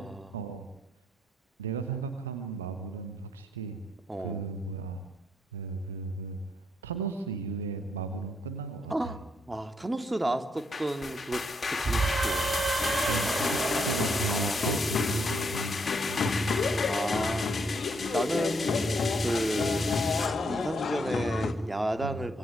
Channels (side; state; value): both; normal; correlation 0.75